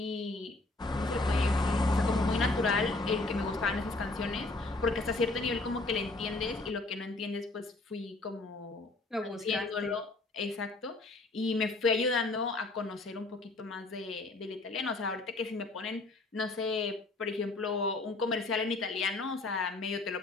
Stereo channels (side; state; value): right; quieter; 3.1 dB